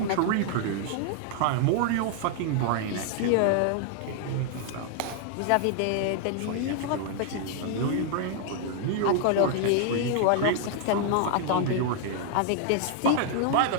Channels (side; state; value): both; different; correlation 0.00